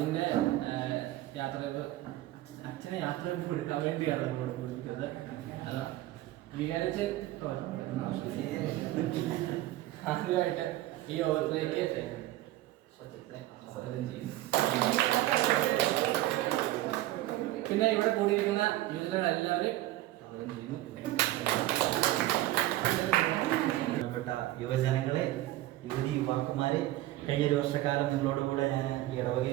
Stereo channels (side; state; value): left; quieter; 16.0 dB